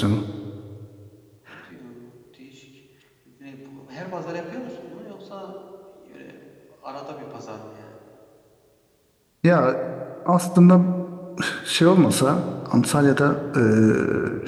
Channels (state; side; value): identical; both; correlation 1.00